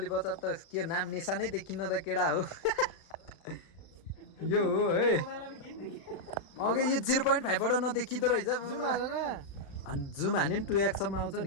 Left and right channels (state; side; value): late; right; 36 ms